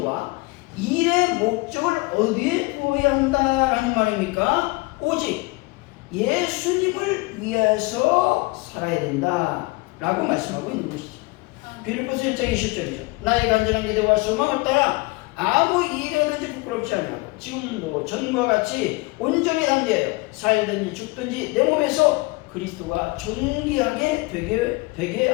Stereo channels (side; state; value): right; quieter; 24.4 dB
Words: 일의 목적을 어디에 두어야 한다라는 말입니까? 오직 예수님을 위해서 살아야 된다라고 말씀하고 있는 것이죠. 빌립보서 1장 20절이죠. 나의 간절한 기대와 소망을 따라 아무 일에든지 부끄럽지 아니하고 지금도 전과 같이 온전히 담대하여 살든지 죽든지 내 몸에서 그리스도가 존귀하게 되게